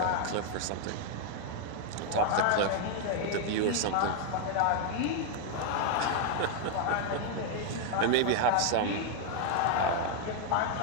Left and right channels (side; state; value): both; different; correlation 0.00